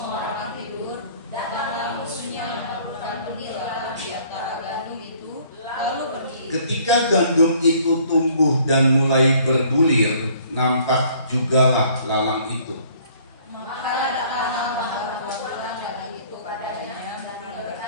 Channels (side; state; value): both; inverted; correlation -0.58